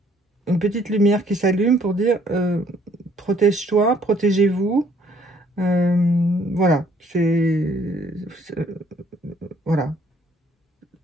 une petite lumière qui s'allume pour dire protège-toi, protégez-vous. Voilà, voilà,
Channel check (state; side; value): normal; both; correlation 0.62